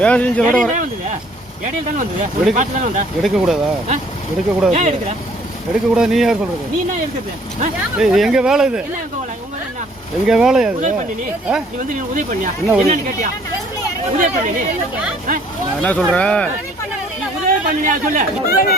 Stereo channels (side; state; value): both; normal; correlation 0.59